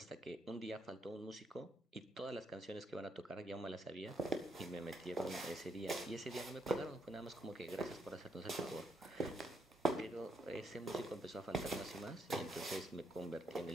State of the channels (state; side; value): normal; both; correlation 0.76